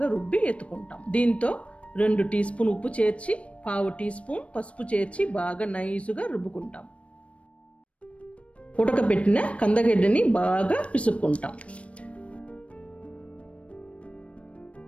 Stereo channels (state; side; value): late; right; 0.062 ms